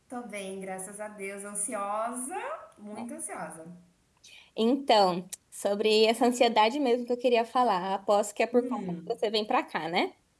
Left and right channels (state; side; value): identical; both; correlation 1.00